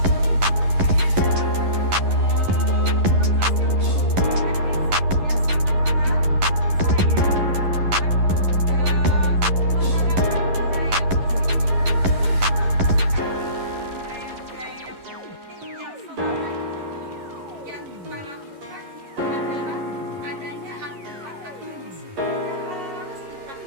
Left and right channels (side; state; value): left; late; 11 ms